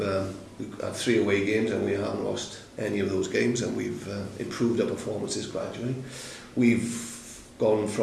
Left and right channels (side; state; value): both; identical; correlation 1.00